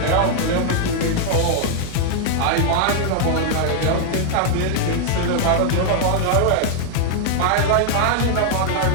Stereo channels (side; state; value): both; different; correlation 0.00